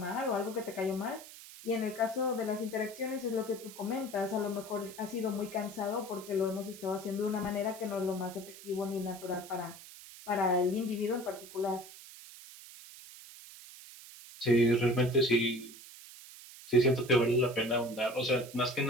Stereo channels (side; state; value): right; noise; hiss, 16 dB below the sound